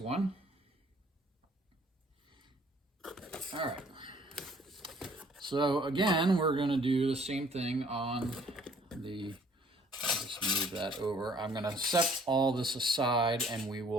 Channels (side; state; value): both; normal; correlation 0.59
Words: All right. So again, we're going to do the same thing on the, I'll just move that over. I'm going to set all this aside, and we